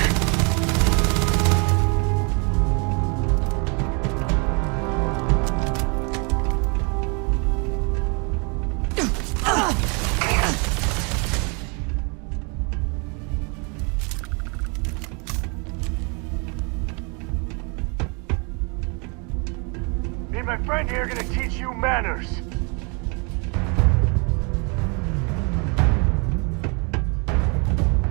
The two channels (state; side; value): quieter; left; 33.5 dB